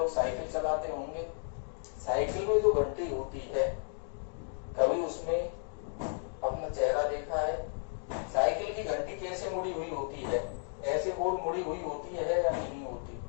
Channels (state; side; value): silent; right; 55 dB below the other